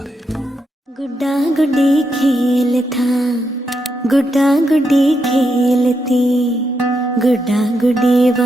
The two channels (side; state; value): both; normal; correlation 0.82